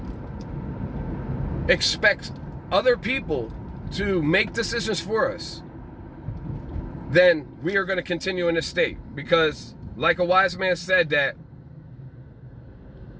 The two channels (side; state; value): both; identical; correlation 1.00